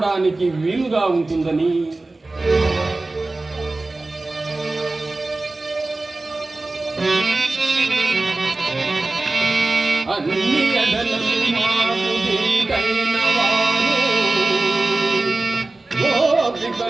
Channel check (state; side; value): quieter; left; 3.1 dB